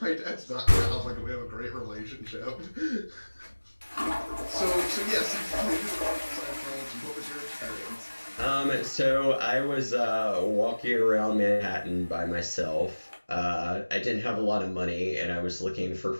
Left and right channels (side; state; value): both; inverted; correlation -1.00